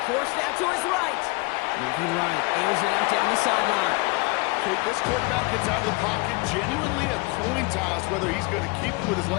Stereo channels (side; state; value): right; quieter; 27.1 dB